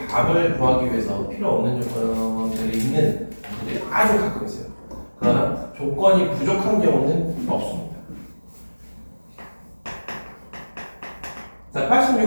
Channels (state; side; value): inverted; both; correlation -1.00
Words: 답을 구하기 위해서 필요 없는 조건들이 있는 문제들이 아주 가끔 있어요. 그러나 조건이 부족한 경우는 없습니다. 자,